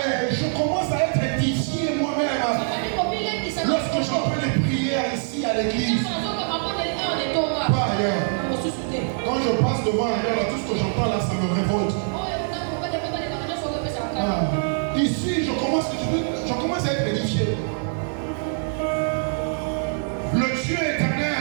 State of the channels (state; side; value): silent; left; 63 dB below the other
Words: Je commence à être édifié moi-même. Lorsque j'entends les prières ici à l'église, pas ailleurs. Quand je passe devant ailleurs, tout ce que j'entends là, ça me révolte. Ici, je commence à être édifié. Le Dieu